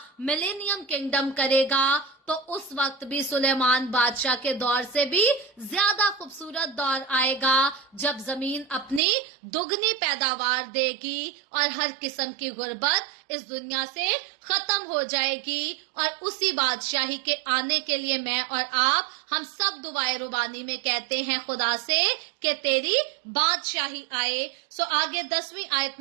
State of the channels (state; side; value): drops out; left; at 9.0 s